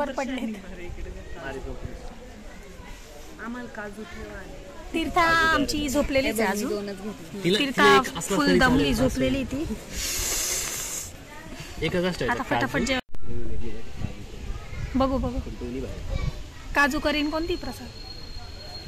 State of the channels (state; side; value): identical; both; correlation 1.00